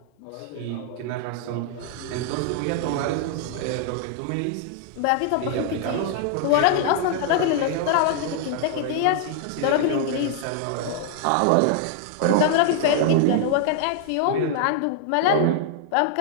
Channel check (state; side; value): different; both; correlation 0.00